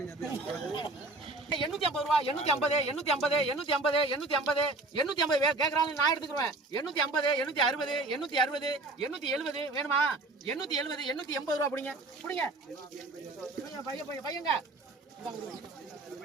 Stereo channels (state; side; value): quieter; left; 3.1 dB